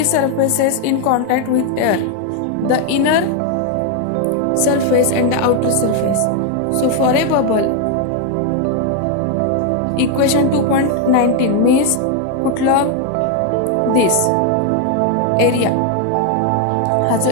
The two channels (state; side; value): different; both; correlation 0.01